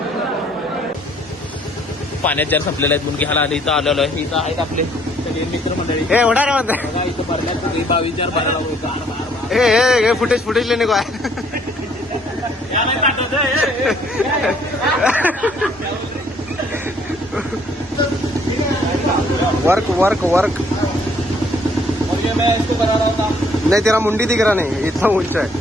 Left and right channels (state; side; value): normal; both; correlation 0.63